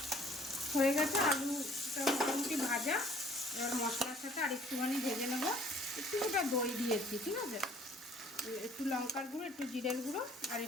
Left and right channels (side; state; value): both; normal; correlation 0.56